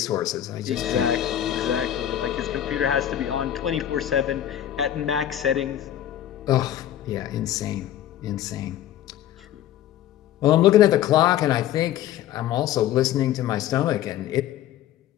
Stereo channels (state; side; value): quieter; right; 11.6 dB